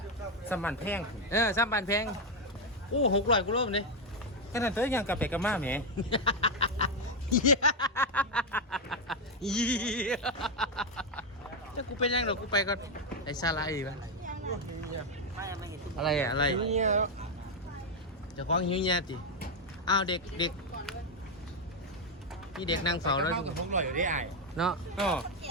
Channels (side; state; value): both; normal; correlation 0.04